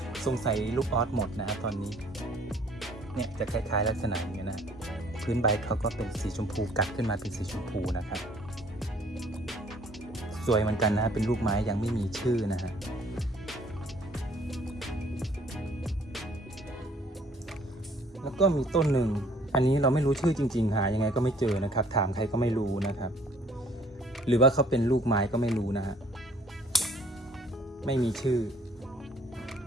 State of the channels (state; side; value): normal; both; correlation 0.58